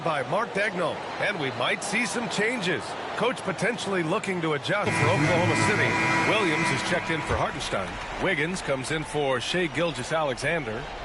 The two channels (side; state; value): both; identical; correlation 1.00